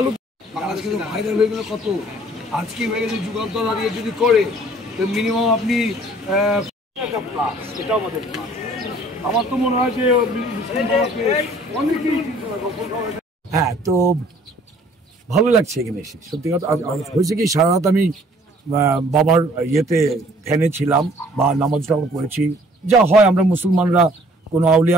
বাংলাদেশ কিন্তু ভাইরাল হয়ে গেল কত। আজকে হয়ে গেছে যুগান্তর দাঁড়িয়ে যদি করে তো মিনিমাম আপনি এটাও আমাদের আমার তো মনে হয় যে অনেকেই হ্যাঁ। তো ভালো লাগছে এখানে এসে সত্যি কথা। হয়েছে কি সারা রাত আমি বাবার ইয়েতে ধ্যানে ছিলাম বা নামাজ টামাজ করেছি, যা হয় আমরা মুসলমানরা কোনো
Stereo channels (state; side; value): normal; both; correlation 0.56